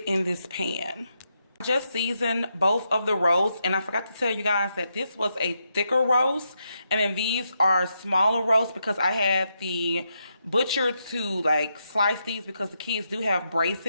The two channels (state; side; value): inverted; both; correlation -0.82